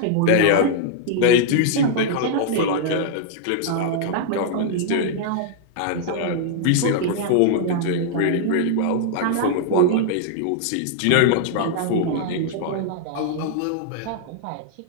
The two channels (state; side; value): different; both; correlation -0.01